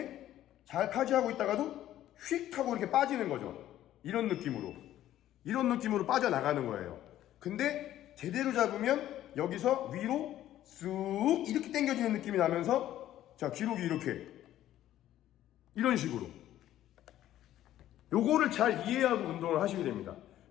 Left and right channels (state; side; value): quieter; right; 12.8 dB